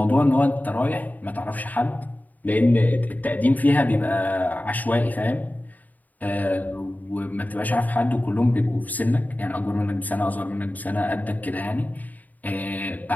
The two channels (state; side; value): late; right; 0.079 ms